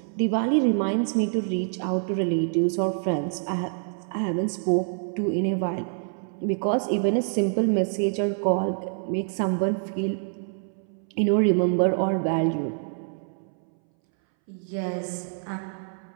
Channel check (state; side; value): silent; left; 61 dB below the other